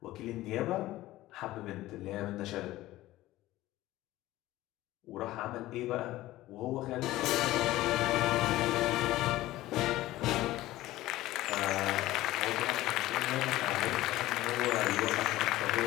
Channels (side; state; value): right; quieter; 16.4 dB